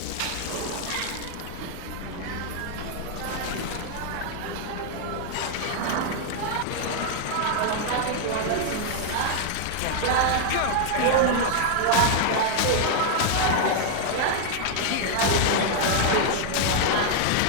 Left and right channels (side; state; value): both; different; correlation 0.00